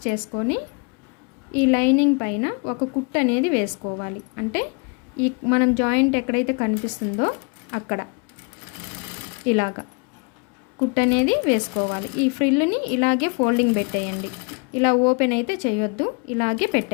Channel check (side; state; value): right; quieter; 34.6 dB